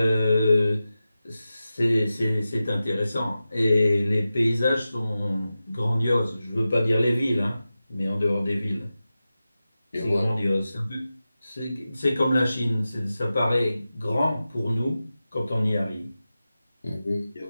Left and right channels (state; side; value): inverted; both; correlation -0.93